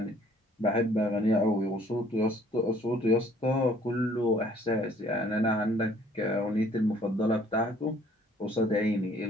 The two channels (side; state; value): both; normal; correlation 0.58